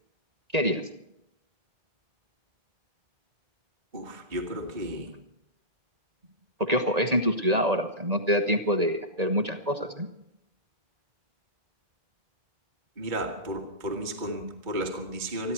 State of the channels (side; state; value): left; late; 1.9 ms